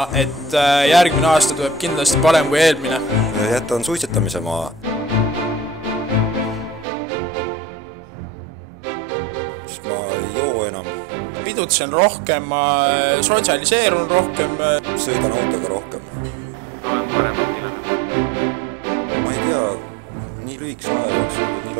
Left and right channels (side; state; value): left; drops out; at 6.9 s